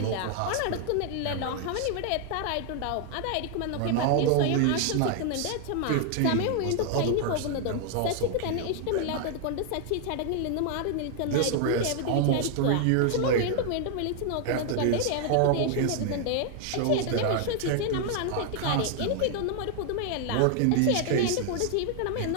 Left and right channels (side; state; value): both; different; correlation 0.00